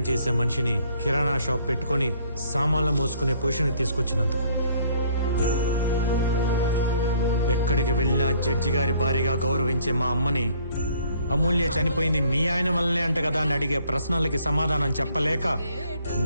చేసే మనిషిని కిరాణా షాప్ పెట్టుకొని సామాన్లు మోసుకునే పొజిషన్కి తీసుకొచ్చినందుకు. ఎక్కడికి వెళ్ళినా జడ్జి గారి భారీగా గౌరవించే మా అమ్మని అమూల్య చనిపోయింది మీ ఆయన వల్లనే అంట కదా అని అడిగే ప్రశ్నలకి సమాధానం చెప్పలేక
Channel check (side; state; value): both; inverted; correlation -0.62